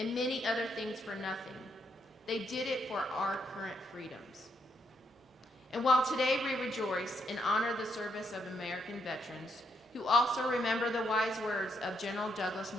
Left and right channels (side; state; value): both; normal; correlation 0.76